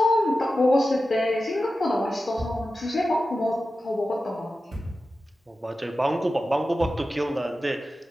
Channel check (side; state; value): both; normal; correlation 0.93